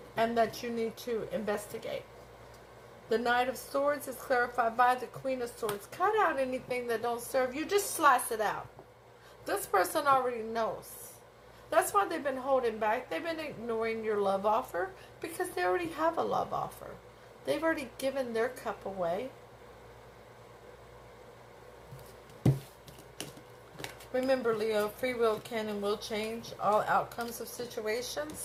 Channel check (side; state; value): both; identical; correlation 1.00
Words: and that you need to investigate. The Knight of Swords is clarified by the Queen of Swords. Cut out anything that don't serve you. Just slice it out. This person already knows. That's why they've been holding back. They've been ignoring your love offer because they already have a love offer. They've already given their cup away. Remember, Leo, free will can and will change all outcomes of